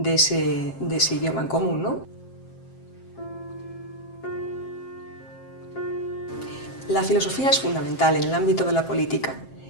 ese idioma en común, ¿no? La filosofía es fundamental en el ámbito de la política.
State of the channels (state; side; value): late; right; 7.6 ms